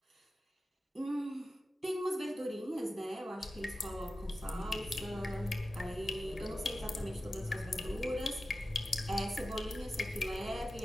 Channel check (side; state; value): both; normal; correlation 0.93